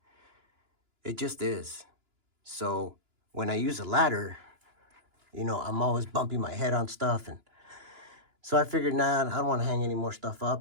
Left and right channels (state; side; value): late; left; 2.9 ms